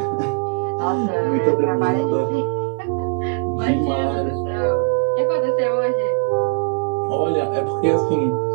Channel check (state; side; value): silent; left; 58 dB below the other